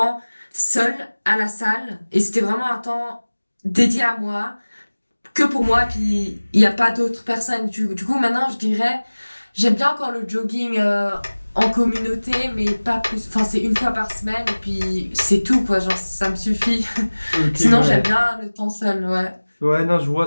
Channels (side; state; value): both; inverted; correlation -1.00